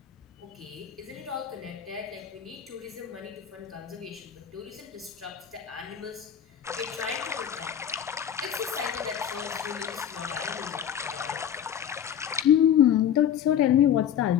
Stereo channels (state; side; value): quieter; right; 9.4 dB